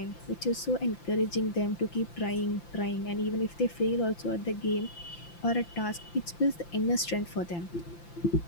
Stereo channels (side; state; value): right; late; 5.8 ms